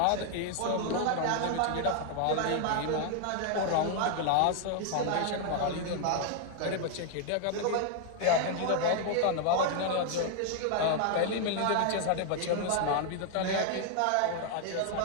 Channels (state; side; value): different; both; correlation 0.00